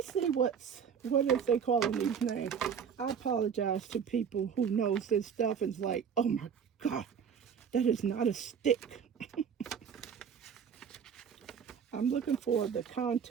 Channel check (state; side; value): quieter; left; 7.3 dB